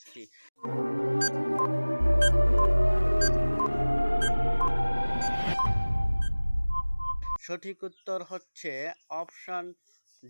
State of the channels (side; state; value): both; inverted; correlation -1.00